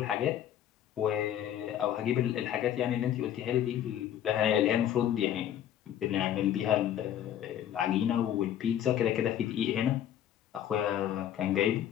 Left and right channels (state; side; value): quieter; right; 10.6 dB